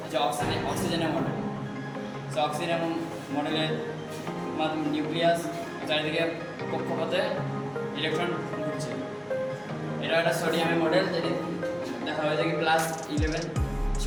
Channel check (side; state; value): both; identical; correlation 1.00